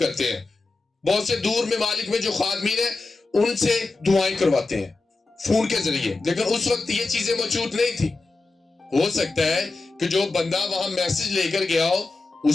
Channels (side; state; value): right; quieter; 3.6 dB